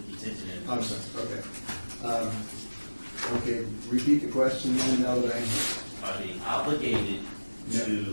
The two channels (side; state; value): both; inverted; correlation -1.00